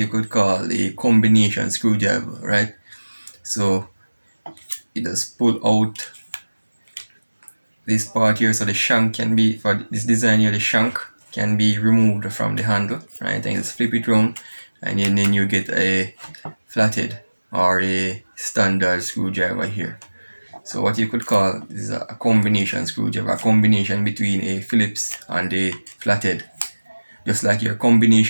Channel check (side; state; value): both; inverted; correlation -1.00